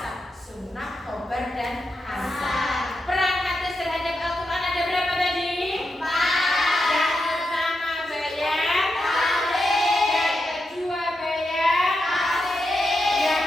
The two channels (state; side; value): normal; both; correlation 0.86